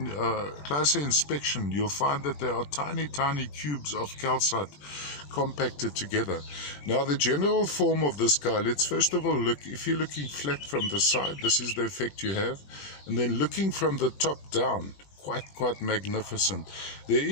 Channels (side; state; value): right; late; 21 ms